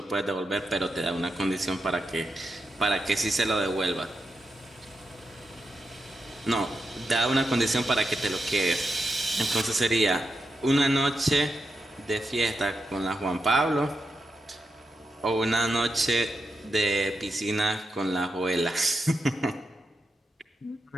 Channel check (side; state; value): both; normal; correlation 0.86